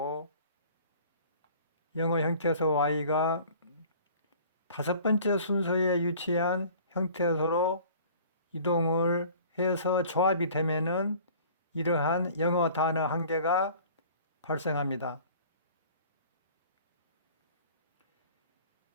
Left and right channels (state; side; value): inverted; both; correlation -0.48